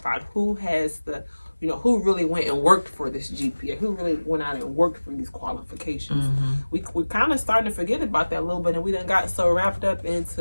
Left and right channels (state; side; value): inverted; both; correlation -1.00